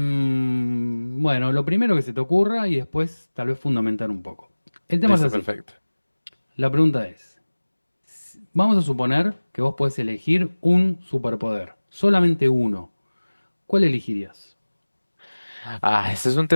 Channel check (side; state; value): both; inverted; correlation -1.00